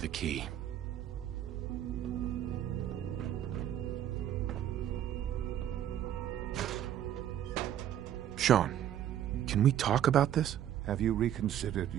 the key. Sean, can we talk about this? Have you reconsidered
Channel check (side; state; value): left; quieter; 11.0 dB